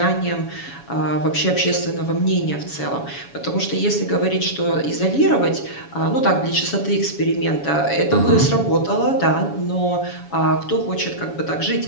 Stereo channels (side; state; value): right; late; 7.1 ms